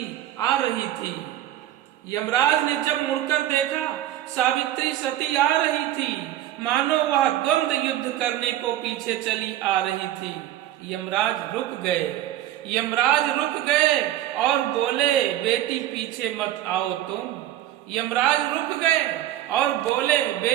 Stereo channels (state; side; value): quieter; left; 13.1 dB